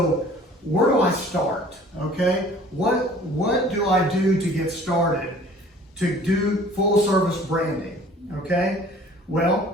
where do I start? Okay, what do I do to get started to do full service branding? Okay,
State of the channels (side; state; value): both; normal; correlation 0.50